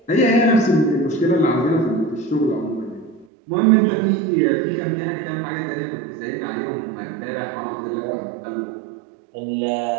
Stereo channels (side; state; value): left; drops out; at 3.2 s